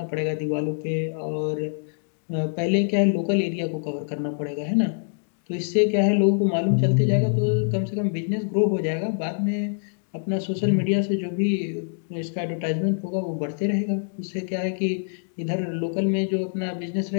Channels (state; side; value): silent; right; digital silence